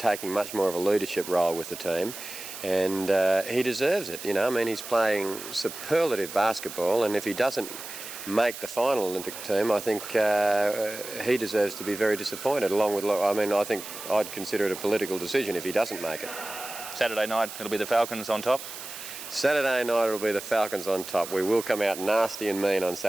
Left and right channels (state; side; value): noise; right; hiss, 11 dB below the sound